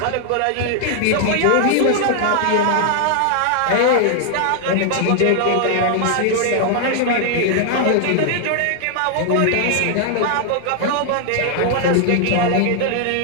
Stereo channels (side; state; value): both; different; correlation 0.00